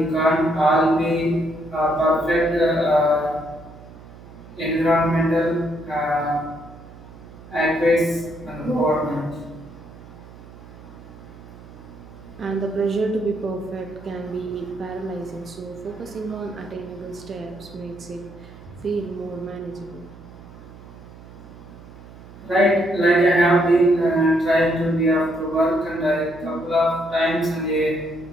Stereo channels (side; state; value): right; noise; hum, 18 dB below the sound